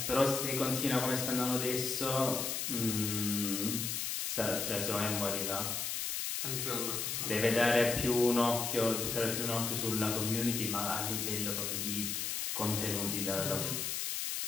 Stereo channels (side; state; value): left; noise; hiss, 1 dB below the sound